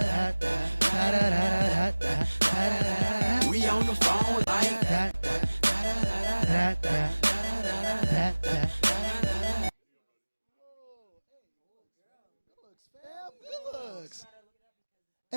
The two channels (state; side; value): inverted; both; correlation -1.00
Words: we on the phone like